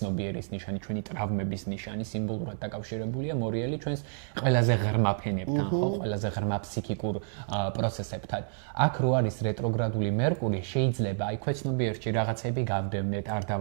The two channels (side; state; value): left; silent; digital silence